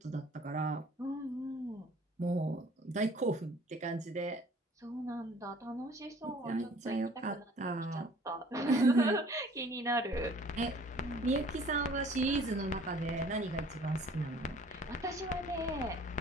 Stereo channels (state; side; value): normal; both; correlation 0.53